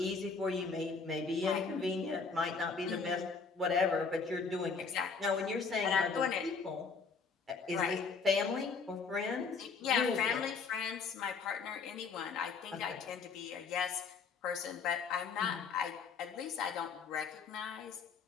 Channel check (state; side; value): quieter; right; 5.1 dB